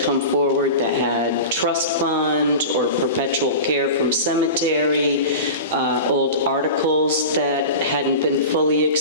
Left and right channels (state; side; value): inverted; both; correlation -0.31